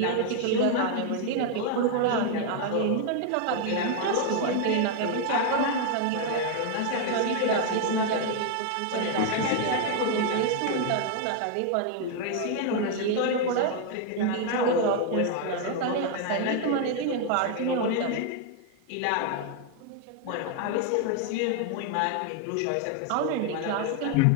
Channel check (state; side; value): different; both; correlation 0.00